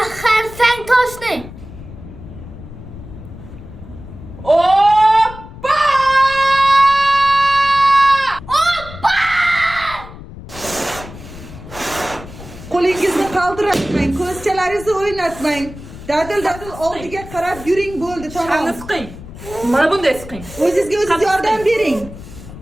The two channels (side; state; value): left; noise; rumble, 15 dB below the sound